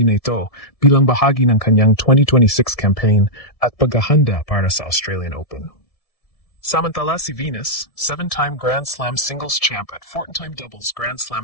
na ito bilang bahagi ng kanyang 2026 campaign at paghahanda para sa Australian Open. Samantala si Venus, 7-time Grand Slam singles champ at 14-time doubles Grand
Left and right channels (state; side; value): late; right; 1.7 ms